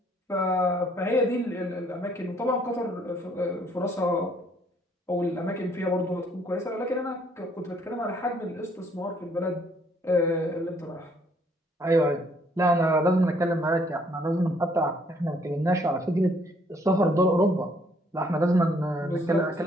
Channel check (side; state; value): both; normal; correlation 0.65